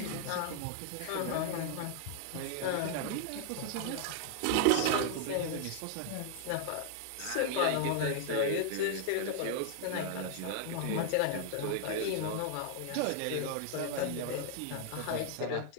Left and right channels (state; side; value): different; both; correlation 0.00